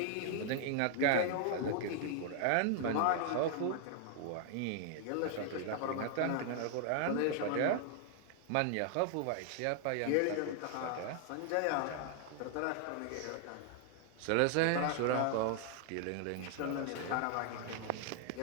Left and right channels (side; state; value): both; different; correlation 0.00